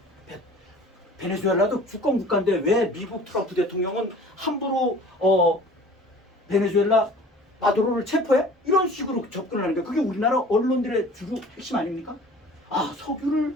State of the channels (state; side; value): normal; both; correlation 0.46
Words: 베네수엘라도 주권 국가인데 왜 미국 트럼프 대통령은 함부로 베네수엘라 마두로를 체포해? 이런 식으로 접근을 하는 거야. 그게 우리나라 언론들의 주로 핵심 아닙니까?